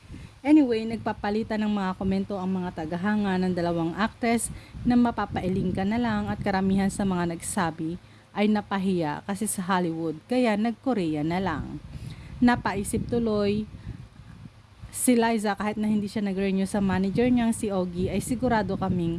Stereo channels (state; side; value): identical; both; correlation 1.00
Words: Anyway, nagpapalitan ng mga komento ang mga tagahanga ng dalawang actress na mapapailing ka na lang, at karamihan sa mga nagsabi ay napahiya kasi sa Hollywood kaya nag-Korea na lang. Napaisip tuloy si Liza, kahit na hindi siya nag-renew sa manager niyang si Ogie, ay sigurado